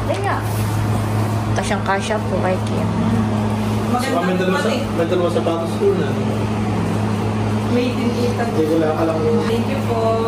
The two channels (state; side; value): identical; both; correlation 1.00